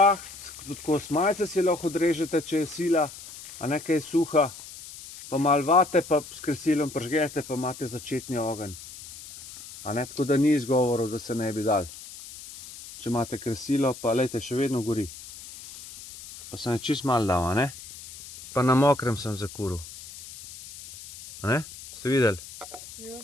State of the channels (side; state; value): left; noise; hiss, 15 dB below the sound